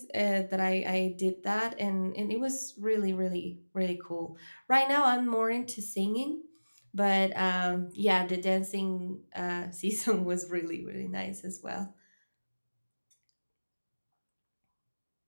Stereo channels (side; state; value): both; inverted; correlation -1.00